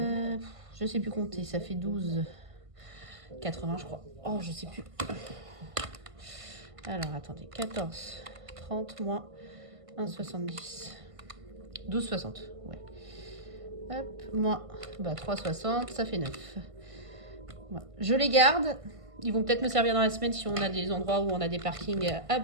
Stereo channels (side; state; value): left; late; 1.5 ms